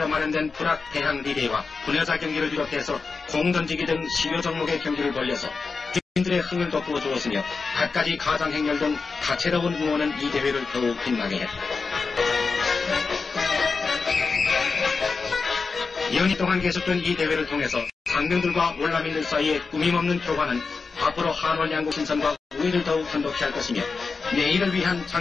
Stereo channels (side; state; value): right; quieter; 4.6 dB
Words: 마련된 불악 대항 리레이와 분여자 경기를 비롯해서 공 던지기 등 10여 종목의 경기를 벌여서 주민들의 흥을 돋구어 주었으며 갖가지 가장 행렬 등 다채로운 응원은 이 대회를 더욱 빛나게 했다. 연이 동안 계속된 이 대회를 통해서 장병들과 월남인들 사이의 꾸밈없는 교환은 앞으로 한월 양국 신선과 우위를 더욱 한독케 할 것이며 내일을 위한